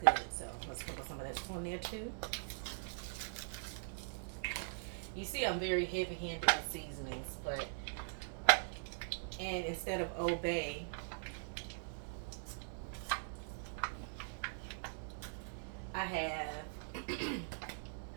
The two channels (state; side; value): silent; left; digital silence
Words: good, so I'm going to sprinkle some of that on there too. You see I'm very heavy-handed with seasonings, and instead of Old Bay, I have